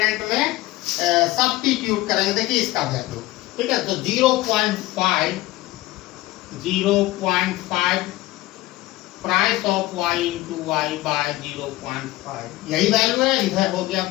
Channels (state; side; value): quieter; right; 18.0 dB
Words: में सब्स्टिट्यूट करेंगे। देखिए इसका वैल्यू, ठीक है, तो 0.5 price of y into y by 0.5, यही वैल्यू है। इधर हो गया